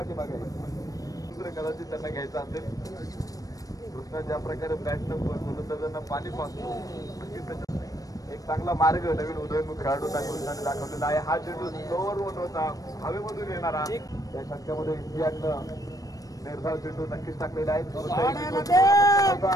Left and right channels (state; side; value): late; right; 0.17 ms